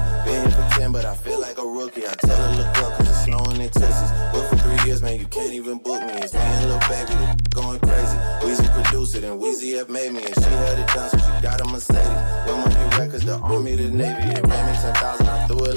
Been here for 10, but I feel like a rookie. I tell her look up, cause it's snowing in Texas. But for 3 years, man, you can't even book me. It's me and Lil Baby, the going crazy. Weezy produced it, and Weezy have made me. And she had it done, so she got a Mercedes. Your money records, the Army, the Navy. It ran me 10,000, I threw it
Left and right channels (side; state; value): both; inverted; correlation -1.00